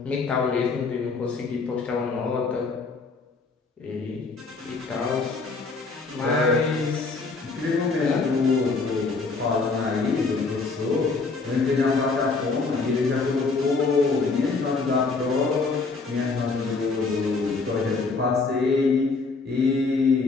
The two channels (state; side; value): quieter; right; 4.2 dB